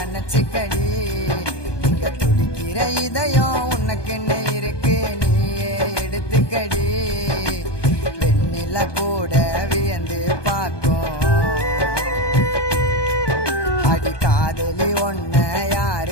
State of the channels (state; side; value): late; right; 1.2 ms